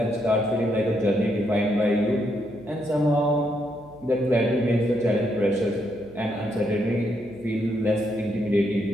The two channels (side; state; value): right; noise; hum, 23 dB below the sound